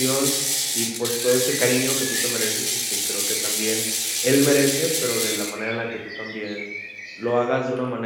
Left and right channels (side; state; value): both; identical; correlation 1.00